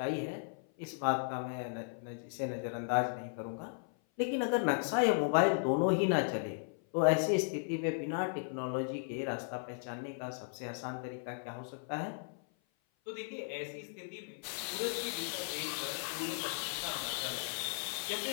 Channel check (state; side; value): silent; right; 54 dB below the other